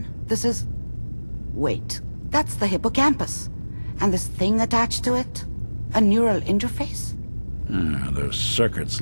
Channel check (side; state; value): both; inverted; correlation -1.00